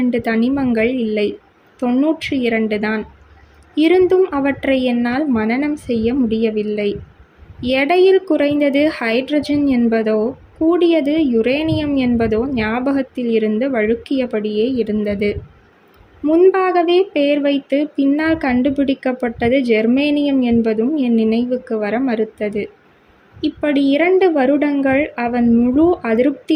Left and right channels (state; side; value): identical; both; correlation 1.00